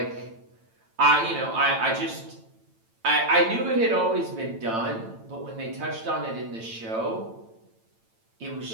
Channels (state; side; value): late; left; 8.9 ms